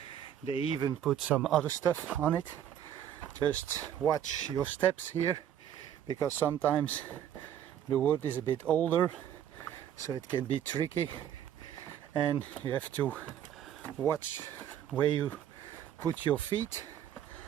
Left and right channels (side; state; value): left; quieter; 10.2 dB